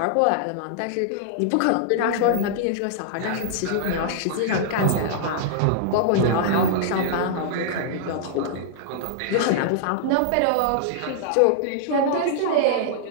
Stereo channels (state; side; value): different; both; correlation -0.01